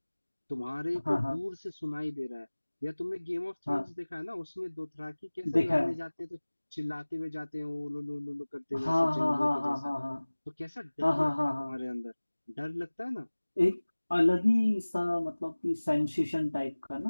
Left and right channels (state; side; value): inverted; both; correlation -1.00